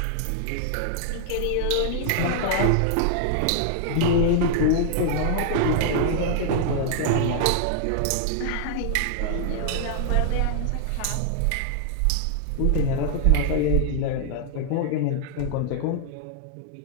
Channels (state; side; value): different; both; correlation -0.01